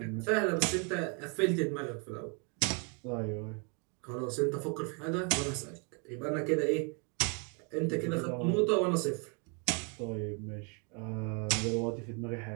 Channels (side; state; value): left; quieter; 34.5 dB